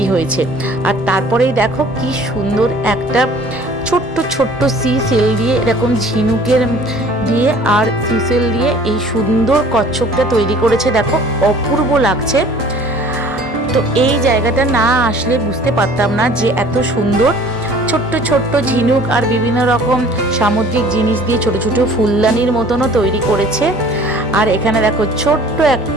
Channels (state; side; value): normal; both; correlation 0.50